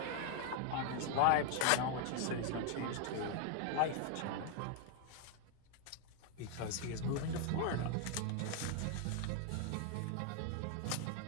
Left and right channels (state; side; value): different; both; correlation 0.00